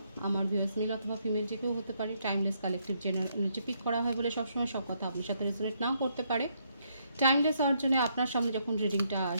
আমার ভিউয়ার্স মেল অথবা ফিমেল যে কেউ হতে পারে। Timeless collective general energy pick করা হয় বলে সবসময় সব কথা আপনার সাথে রেজোনেট নাও করতে পারে। টাইমলেস হওয়ার জন্য আপনার সামনে যখন রিডিংটা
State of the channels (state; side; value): inverted; both; correlation -0.74